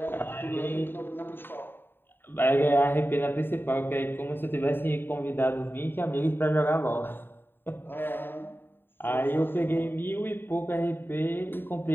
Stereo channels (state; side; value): late; right; 0.098 ms